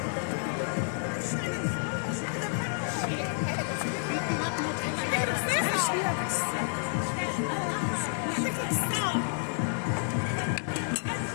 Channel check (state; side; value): silent; right; 56 dB below the other